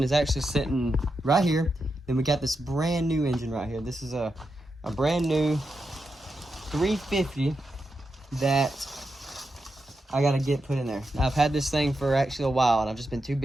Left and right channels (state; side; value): normal; both; correlation 0.87